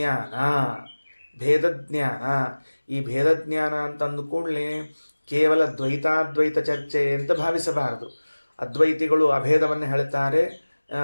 ಈ ಭೇದಜ್ಞಾನ ಅಂತಂದು ಕೂಡಲೇ ಕೇವಲ ದ್ವೈತಾದ್ವೈತ ಚರ್ಚೆ ಅಂತ ಭಾವಿಸಬಾರದು. ಅದ್ವೈತಿಗಳು ಅಭೇದವನ್ನು ಹೇಳ್ತಾರೆ,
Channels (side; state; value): both; inverted; correlation -1.00